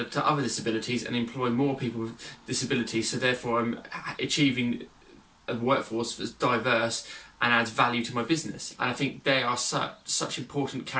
to other disabilities and employ more people with disabilities, so therefore I'm achieving a workforce that's diverse and adds value to my business. And I think they are such important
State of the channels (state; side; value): identical; both; correlation 1.00